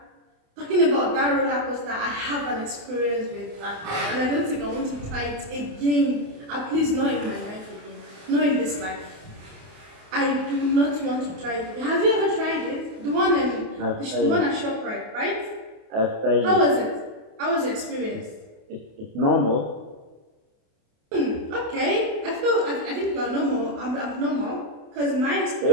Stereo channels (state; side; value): late; left; 28 ms